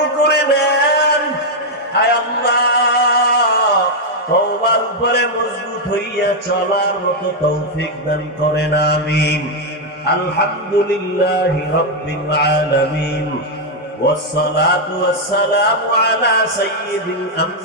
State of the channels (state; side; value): normal; both; correlation 0.00